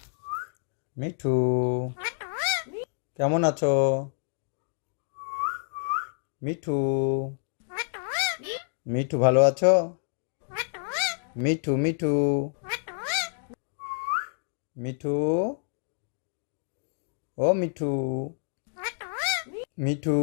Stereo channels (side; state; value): right; silent; digital silence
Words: মিঠু, কেমন আছো? মিঠু, মিঠু ভালো আছো? মিঠু, মিঠু, মিঠু, ও মিঠু, মিঠু,